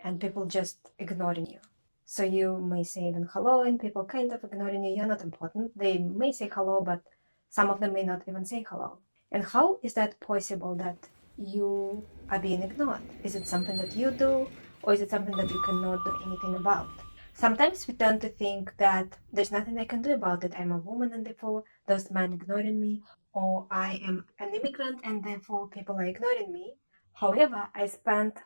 people just ignoring you? So you may say even hello, and people kind of ignoring you. You're not important. They may say hello, but some of them may not even say hello. And how is that possible that you are being ignored? Is it something that you do, or is it something that you cannot do anything about? Sometimes we tend to think that there's nothing I can do about it. I'm a woman, and therefore there's men ignoring me, or I am an immigrant and therefore people are ignoring me. However, I spent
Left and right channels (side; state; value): both; inverted; correlation -1.00